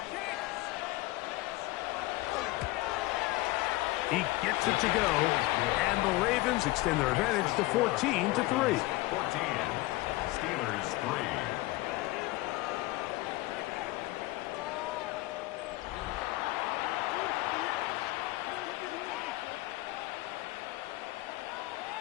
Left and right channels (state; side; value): quieter; right; 19.9 dB